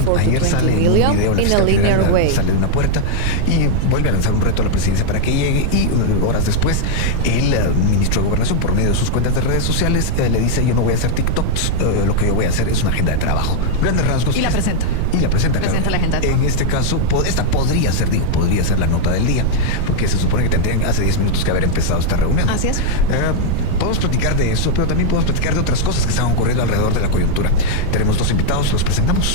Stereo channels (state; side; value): different; both; correlation -0.01